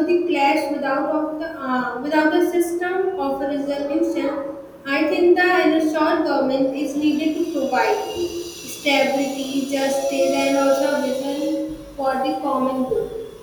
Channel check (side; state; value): both; identical; correlation 1.00